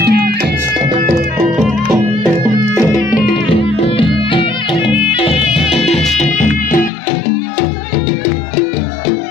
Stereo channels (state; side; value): drops out; right; at 6.9 s